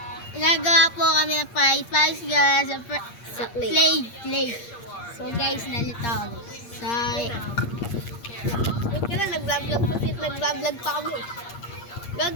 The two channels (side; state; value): right; late; 8.6 ms